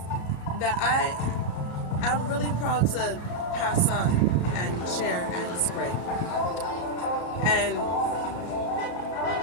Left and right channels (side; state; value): right; late; 34 ms